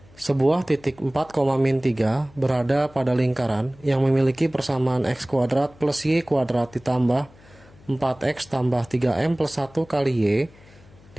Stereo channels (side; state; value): left; noise; hum, 25 dB below the sound